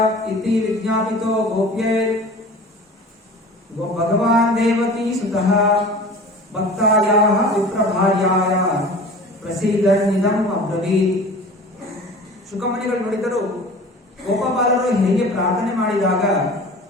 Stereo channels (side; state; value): both; normal; correlation 0.40